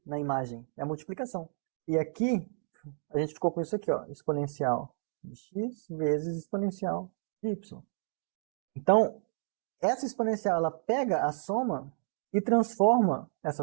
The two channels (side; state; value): left; silent; digital silence